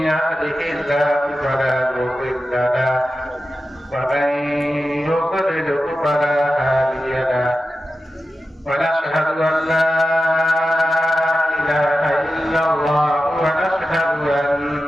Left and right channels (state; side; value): normal; both; correlation 0.92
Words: يهده الله فلا مضل له ومن يضلل فلا هادي له ونشهد أن لا إله إلا الله ونشهد